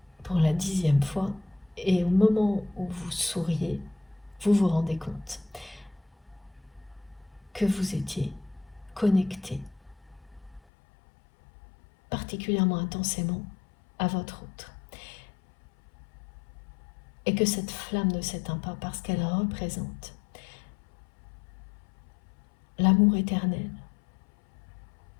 pour la 10e fois. Et au moment où vous souriez, vous vous rendez compte que vous étiez connecté particulièrement intensément à votre autre. Et que cette flamme ne s'éteint pas parce qu'elle représente l'amour éternel.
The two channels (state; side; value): drops out; right; at 10.6 s